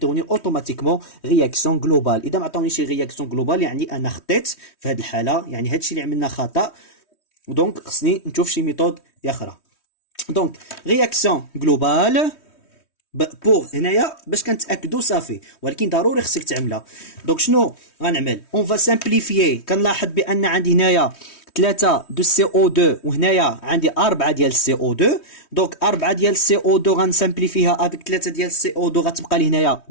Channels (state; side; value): late; right; 3.2 ms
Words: اوتوماتيكمون رياكسيون جلوبال. اذا ما عطاونيش رياكسيون جلوبال يعني انا خطيت في هاد الحاله، يعني هادشي اللي عملنا خطا. دونك خصني نشوف شي ميثود اخرى. دونك رياكسيون جلوبال بور هنايا باش كنتاكدوا صافي، ولكن ضروري خصك تعملها. دونك شنو غنعمل؟ اون فا سامبليفيي. كنلاحظ بان عندي هنايا 3 دو سي او 2 وهنايا عندي 4 ديال سي او 2. دونك 4 ديال سي او 2 غنسامبليفيها افيك 3 ديال سي او 2 غتبقى لي هنايا